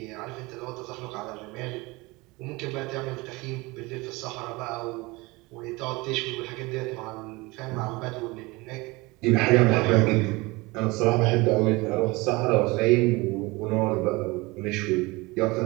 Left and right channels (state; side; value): quieter; left; 23.6 dB